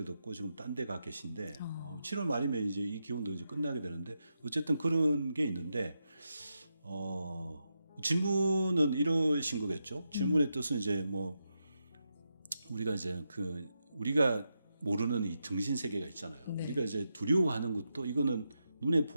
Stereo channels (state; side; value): inverted; both; correlation -0.86